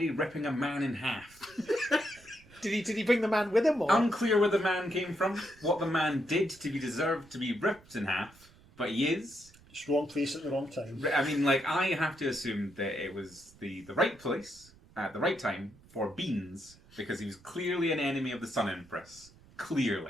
ripping a man in half. Did he bring the man with him, or? Unclear where the man came from, what the man did to be deserved to be ripped in half, but he is. Just wrong place at the wrong time. I mean, I have to assume that it was the right place at the right time for Beans, because he was clearly an enemy of the Sun Empress.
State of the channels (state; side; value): noise; right; rumble, 25 dB below the sound